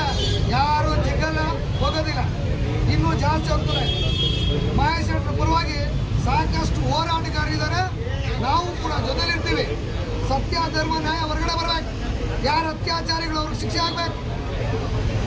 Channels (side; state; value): both; identical; correlation 1.00